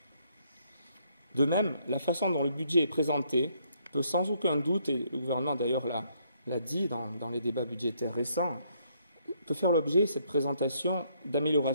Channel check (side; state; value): both; inverted; correlation -0.70